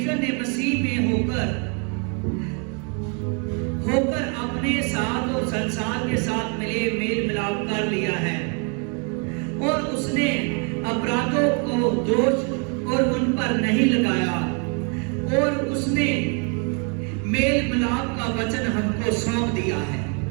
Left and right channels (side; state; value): left; quieter; 37.1 dB